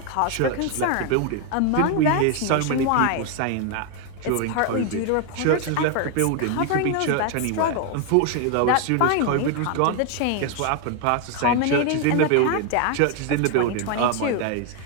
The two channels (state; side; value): different; both; correlation 0.01